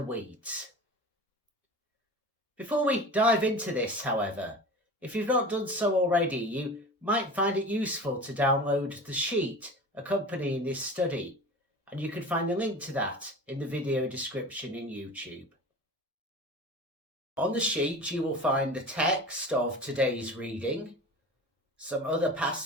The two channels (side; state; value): both; normal; correlation 0.36